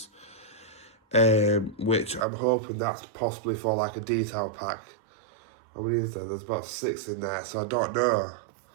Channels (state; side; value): drops out; left; at 2.2 s